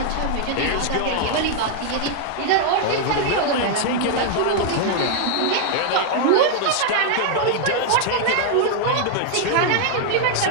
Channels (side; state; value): both; different; correlation 0.00